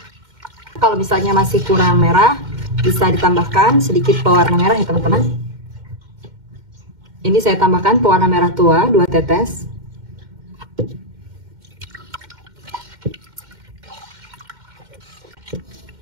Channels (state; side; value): late; left; 2.1 ms